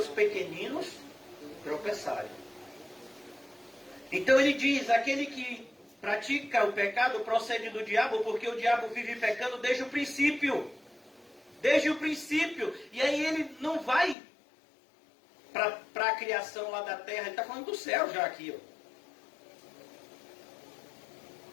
pequeninos tropeçarem. Então ele diz, aquele que pratica o pecado procede do diabo, porque o diabo vive pecando desde o princípio. Desde o princípio. E aí ele não vai para a criação lá da terra, ele está falando do céu já aqui. Ó.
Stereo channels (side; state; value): right; drops out; at 14.2 s